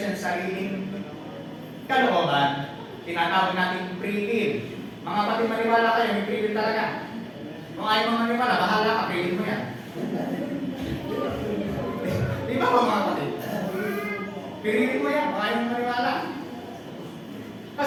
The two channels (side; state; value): both; identical; correlation 1.00